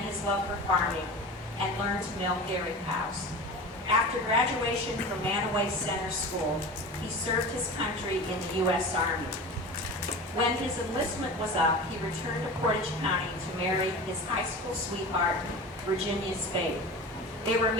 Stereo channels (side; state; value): both; normal; correlation 0.32